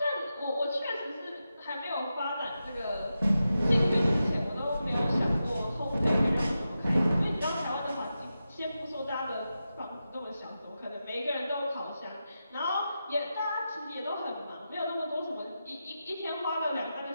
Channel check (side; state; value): both; inverted; correlation -0.90